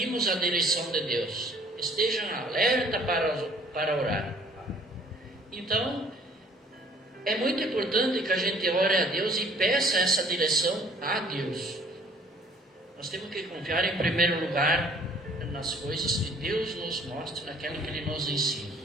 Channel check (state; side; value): normal; both; correlation 0.57